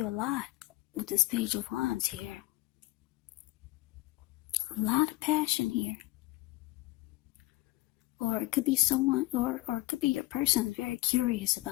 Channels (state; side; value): quieter; right; 19.3 dB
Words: a lot with this Page of Wands here. A lot of passion here. Or it could be someone, or it could be your person is very curious